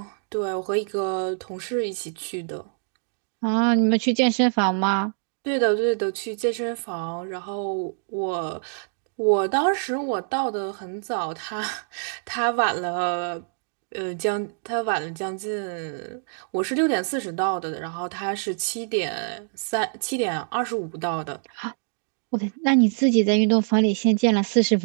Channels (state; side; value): silent; left; digital silence